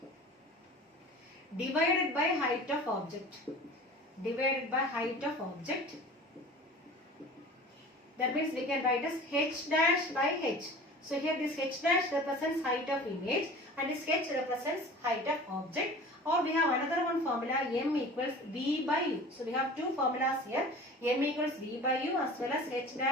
divided by height of object, that means we can write as h dash by h. So here this h dash represents height of image and this h represents height of object. Or we have another one formula, M equals V by U. So we have two formulas here, M equals V by U as well as h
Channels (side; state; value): both; normal; correlation 0.40